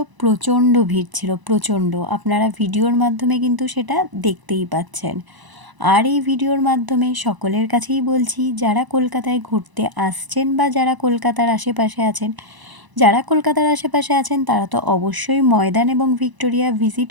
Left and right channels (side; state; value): left; late; 1.0 ms